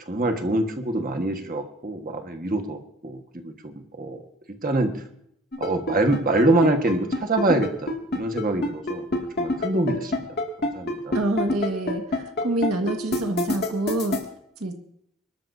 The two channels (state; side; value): normal; both; correlation 0.49